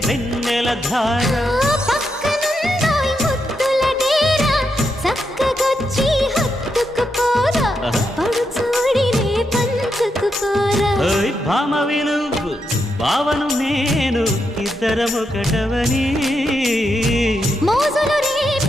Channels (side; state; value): both; normal; correlation 0.83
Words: వెన్నెల ధార. పక్కనుందోయ్ ముద్దుల డేరా, చక్కగొచ్చి హత్తుకుపోరా, పడు చూడినే పంచుకుపోరా. ఓయ్ భామ విలువు భావను నేను, ఇద్దరమొకటవని మోజులు